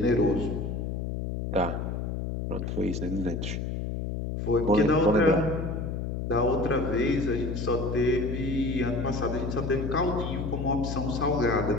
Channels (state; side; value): noise; left; hum, 3 dB below the sound